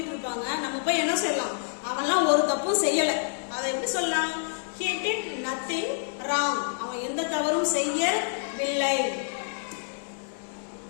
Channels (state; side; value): silent; right; 60 dB below the other